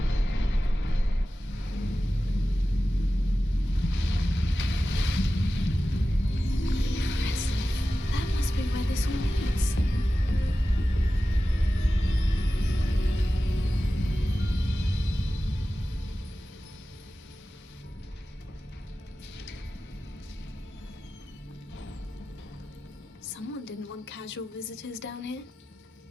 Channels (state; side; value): normal; both; correlation 0.94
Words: That must be where this all leads. Someone didn't want casual visitors down here.